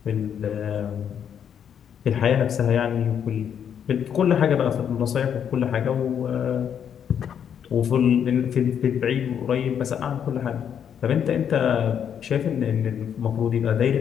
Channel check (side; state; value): right; quieter; 8.4 dB